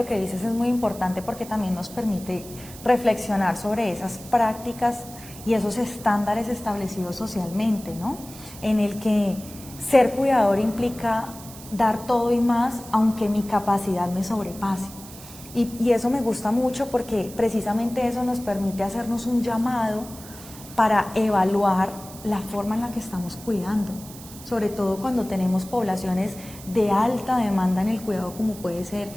que dices es muy importante porque también nos permite reflexionar sobre esas prácticas y esos estándares establecidos socialmente, ¿no? En el que ser cuidador implica dar todo y más, aunque mi capacidad me sobrepase. Y eso me gusta mucho porque precisamente eso nos permite hacernos un llamado para evaluar la forma en la que estamos cuidando, sobre todo cuando tenemos poblaciones de alta demanda en el cuidado, como puede ser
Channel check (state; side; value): noise; right; hiss, 17 dB below the sound